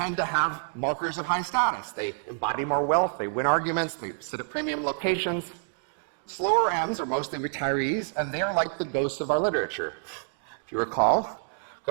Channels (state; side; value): silent; left; digital silence